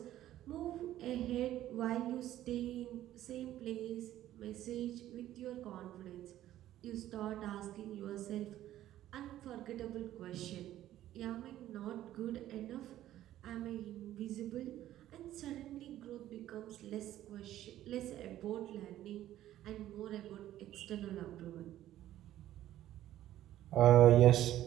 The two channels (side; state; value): left; quieter; 13.2 dB